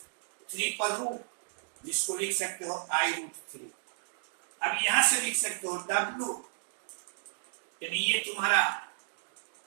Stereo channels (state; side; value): silent; left; digital silence